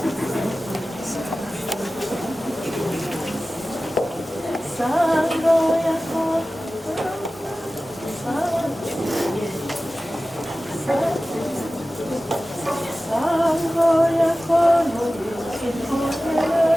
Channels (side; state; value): both; normal; correlation 0.96